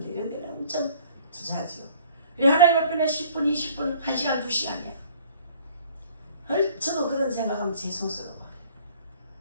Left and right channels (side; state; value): both; inverted; correlation -0.54